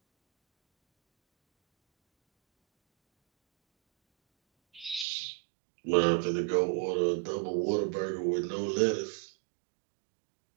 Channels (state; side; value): drops out; left; at 5.1 s